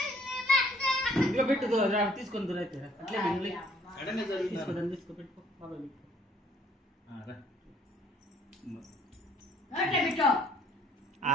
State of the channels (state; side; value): normal; both; correlation 0.61